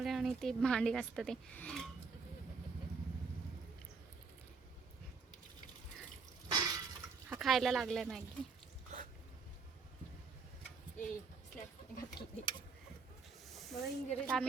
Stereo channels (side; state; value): left; quieter; 4.9 dB